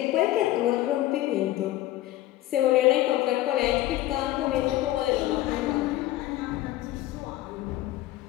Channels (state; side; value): quieter; right; 15.3 dB